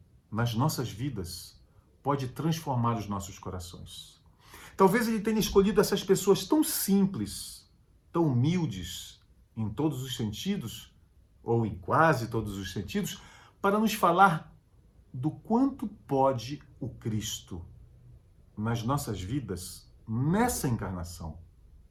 nas nossas vidas, pode transformar os nossos corações. Talvez Ele tenha escolhido essas pessoas tão simples, tão humildes, em todos os sentidos, ou em quase todos os sentidos, para nos falar do quanto pode o Cristo nas nossas vidas, nessa encarnação.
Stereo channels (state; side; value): identical; both; correlation 1.00